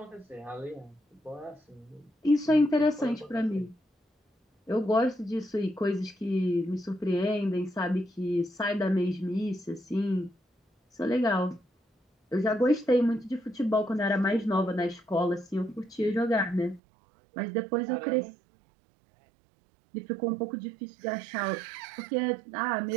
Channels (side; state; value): left; drops out; at 16.8 s